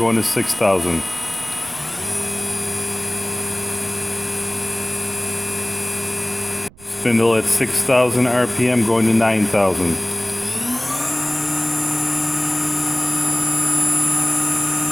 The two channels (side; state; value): right; noise; rumble, 23 dB below the sound